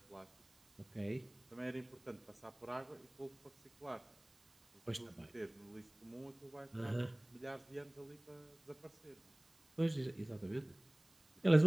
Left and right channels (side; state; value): right; noise; hiss, 30 dB below the sound